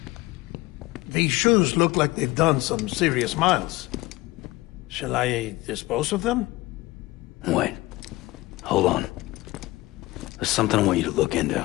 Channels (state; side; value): quieter; right; 19.9 dB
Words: These shoes look like they've done some serious miles. Shall I dispose of them? Wait. Hold on. There's something I want you to look into.